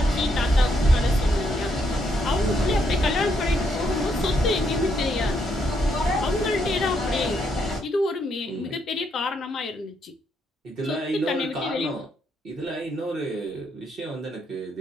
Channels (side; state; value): both; normal; correlation 0.76